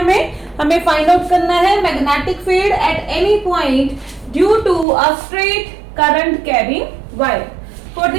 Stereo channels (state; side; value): drops out; left; at 4.9 s